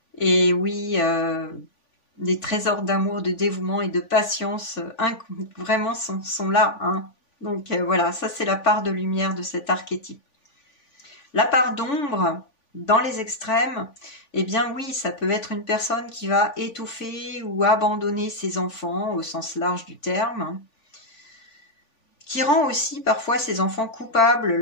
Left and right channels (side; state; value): right; late; 3.5 ms